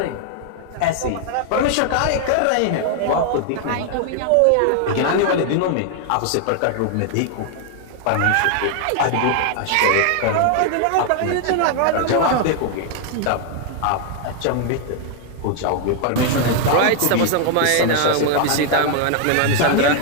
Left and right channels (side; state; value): both; different; correlation 0.00